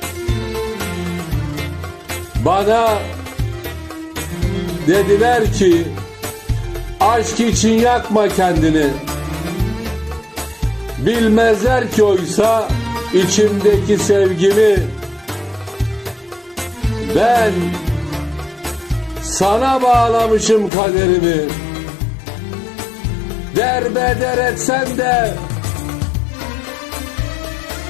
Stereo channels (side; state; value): right; drops out; at 20.7 s